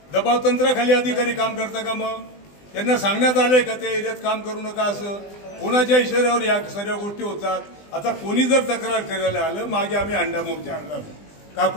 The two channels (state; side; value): late; right; 20 ms